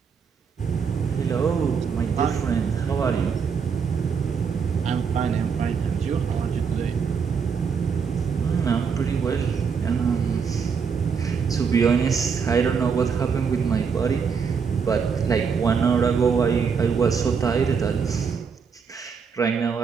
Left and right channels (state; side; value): quieter; left; 6.1 dB